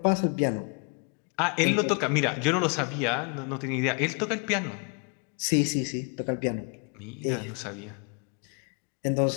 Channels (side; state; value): right; quieter; 36.8 dB